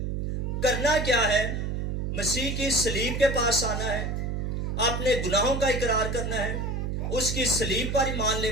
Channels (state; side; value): noise; right; hum, 2 dB below the sound